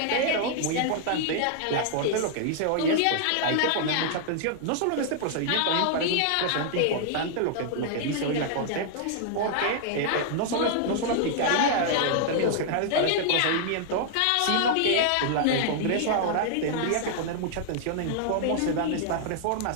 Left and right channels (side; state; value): both; different; correlation -0.01